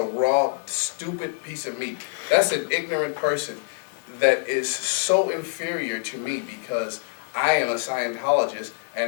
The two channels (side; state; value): right; silent; 58 dB below the other